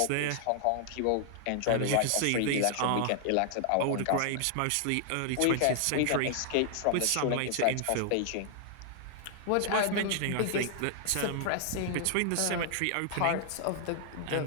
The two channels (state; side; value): different; both; correlation 0.00